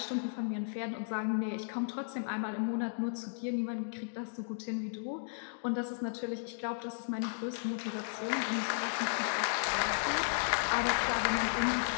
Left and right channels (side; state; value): right; silent; digital silence